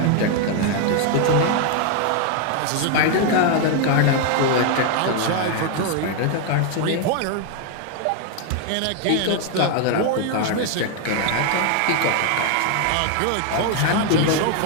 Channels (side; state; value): both; different; correlation 0.01